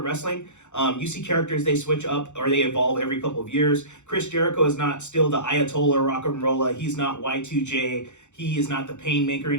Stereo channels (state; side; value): late; right; 0.84 ms